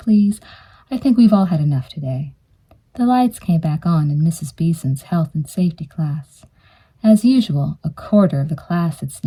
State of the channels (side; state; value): both; identical; correlation 1.00